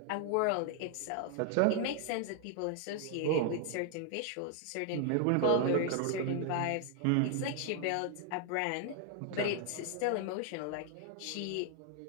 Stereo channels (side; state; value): both; different; correlation 0.00